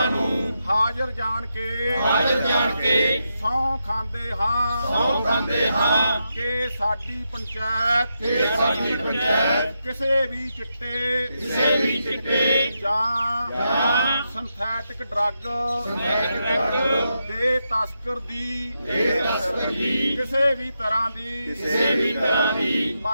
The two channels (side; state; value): both; inverted; correlation -0.85